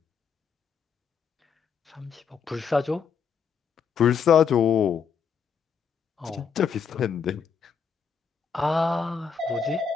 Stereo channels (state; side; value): quieter; right; 6.5 dB